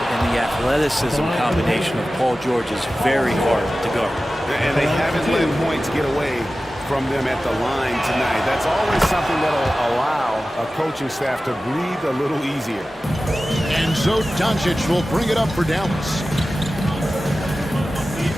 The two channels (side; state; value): both; normal; correlation 0.95